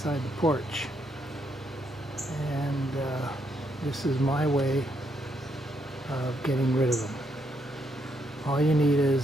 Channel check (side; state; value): both; normal; correlation 0.76